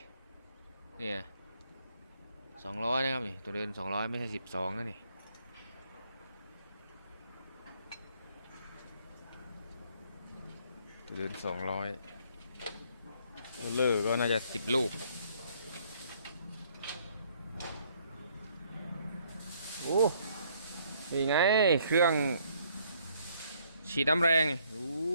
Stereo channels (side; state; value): both; inverted; correlation -0.66